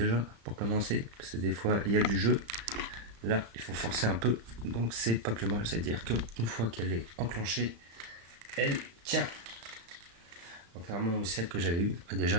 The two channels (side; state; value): left; late; 35 ms